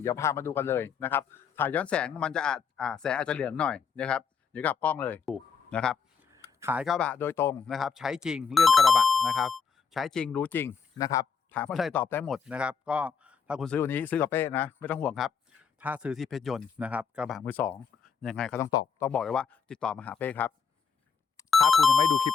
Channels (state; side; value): quieter; right; 6.3 dB